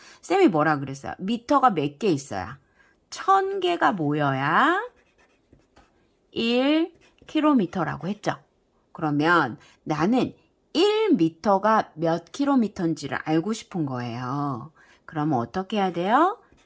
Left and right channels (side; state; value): both; identical; correlation 1.00